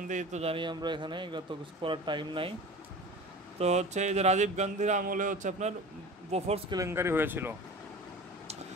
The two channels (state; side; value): normal; both; correlation 0.36